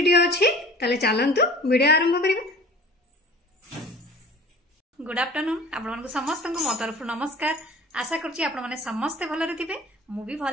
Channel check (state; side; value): normal; both; correlation 0.44